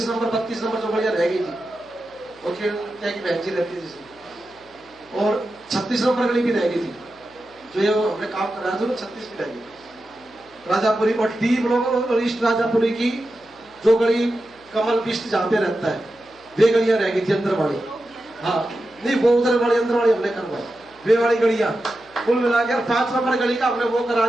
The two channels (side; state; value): left; noise; hum, 30 dB below the sound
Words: नंबर 32 नंबर जो बढ़िया रह गई थी, और क्या की बहन जी रहती थी, और 36 नंबर गली भी रह गई थी, जो ये हमने काम कराया था, 36 भी रह गई। राजापुरी और D ब्लॉक और ईस्ट राजापुरी की जो गली कमल बिस्ट जहाँ पे रहता है, वे गलियां रह गई थी अंदर वाली। हाँ नहीं, वो उधर वाली अंदर वाली हमने करवाई, वे वाली गलियां कुल मिलाकर 5 नंबर गली का हमने वो करा